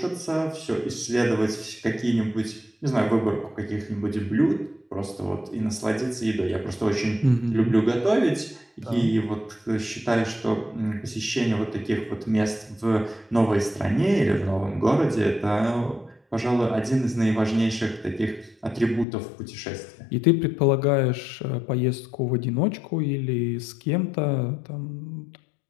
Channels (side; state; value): right; drops out; at 19.1 s